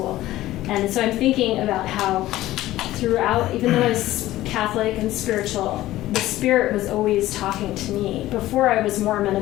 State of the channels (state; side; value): quieter; right; 15.6 dB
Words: And so I'm thinking about how throughout, even though I was Catholic and spiritual, the Spirit was always talking to me. Before I was Mormon